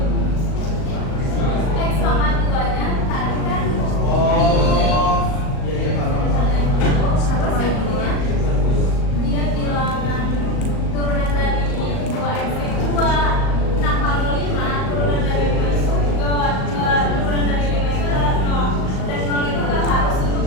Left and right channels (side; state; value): right; late; 38 ms